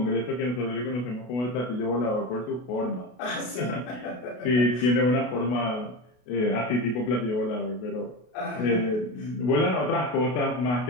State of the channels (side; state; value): right; late; 32 ms